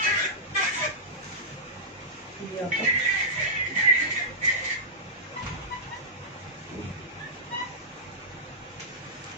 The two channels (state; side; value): normal; both; correlation -0.14